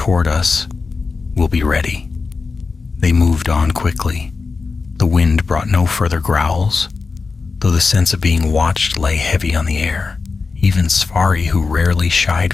us, we'll be ready. They moved on quickly. The wind brought no further growls, though the sense of being watched lay heavy on the air. Even Svari, who rarely shied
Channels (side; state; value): right; quieter; 4.4 dB